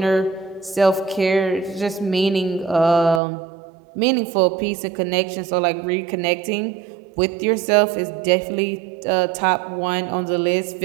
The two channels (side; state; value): left; drops out; at 3.2 s